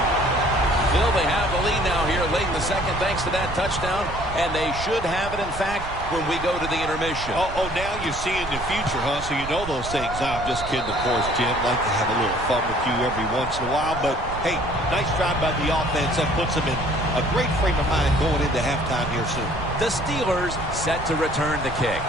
Phil, they have the lead now here late in the second thanks to that touchdown, and they should have it, in fact, when we go to the intermission. Oh, now you're seeing the future, huh? So you know those things. I'm just kidding, of course, Jim. Like to have a little fun with you every once in a while. But, hey, nice drive by the offense. That puts them in a great frame of mind going into halftime here soon. The Steelers set to return the kick.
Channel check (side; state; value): right; noise; rumble, 10 dB below the sound